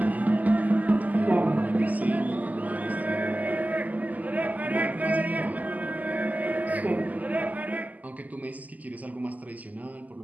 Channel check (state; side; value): late; left; 0.079 ms